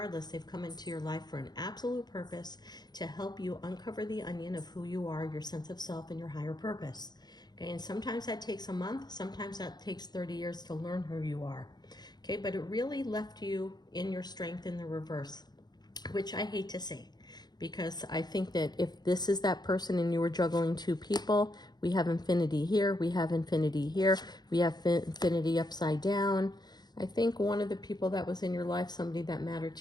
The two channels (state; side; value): late; right; 0.20 ms